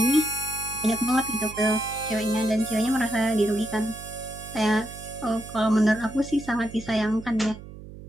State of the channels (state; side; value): noise; right; hum, 15 dB below the sound